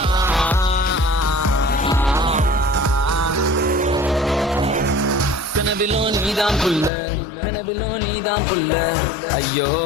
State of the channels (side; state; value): right; drops out; at 6.9 s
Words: கனவிலோ நீதான் புள்ள, கனவிலோ நீதான் புள்ள, ஐயோ